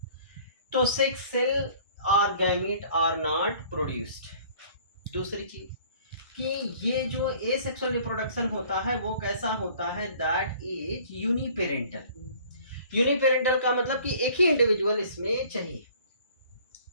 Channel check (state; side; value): inverted; both; correlation -0.52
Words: तो सेक्स सेल और गैमेट आर नॉट प्रोड्यूस्ड। दूसरी चीज कि ये जो ए सेक्सुअल रिप्रोडक्शन होता है वो कैसा होता है, दैट इज यूनिपेरेंटल। यूनिपेरेंटल का मतलब कि एक ही इंडिविजुअल इसमें चाहिए।